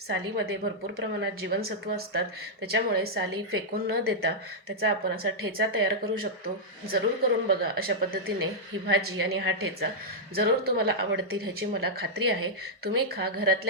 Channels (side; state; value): both; normal; correlation -0.07